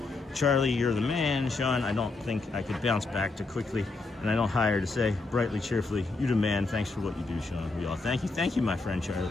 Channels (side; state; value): right; quieter; 3.6 dB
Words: Charlie, you're the man. Sean, I don't think I could bounce back too quickly. And I don't hire to say brightly, cheerfully, you the man. Thanks for what you do, Sean. We all thank you. Thank you, my friend Charlie.